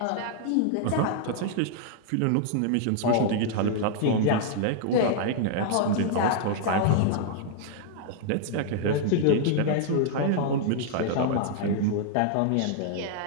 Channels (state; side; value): different; both; correlation 0.00